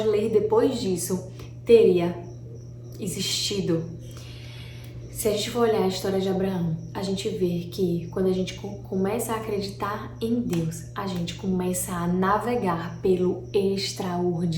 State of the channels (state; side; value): identical; both; correlation 1.00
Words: ler depois disso teria existido. Se a gente for olhar a história de Abraão, a gente vê que quando a gente começa a acreditar em Deus, a gente começa a navegar pelo